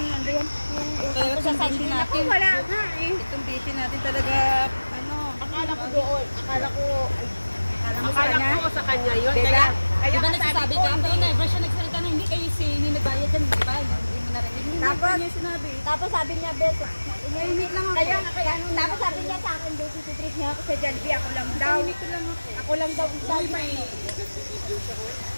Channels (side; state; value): both; inverted; correlation -1.00